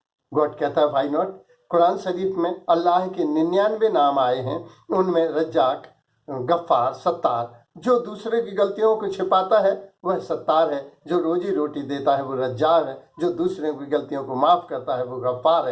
God कहता है व्हाई नॉट। कुरान शरीफ में अल्लाह के 99 नाम आए हैं, उनमें रज्जाक, गफ्फार, सत्तार। जो दूसरे की गलतियों को छिपाता है वह सत्तार है, जो रोजी रोटी देता है वो रज्जाक है, जो दूसरे की गलतियों को माफ करता है वो गफ्फार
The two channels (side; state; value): both; identical; correlation 1.00